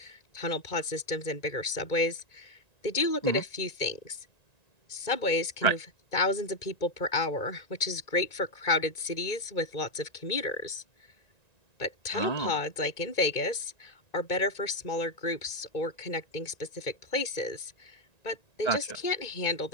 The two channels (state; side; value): late; right; 1.9 ms